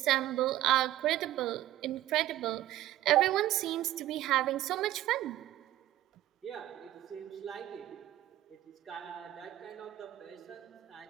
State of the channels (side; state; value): left; quieter; 14.3 dB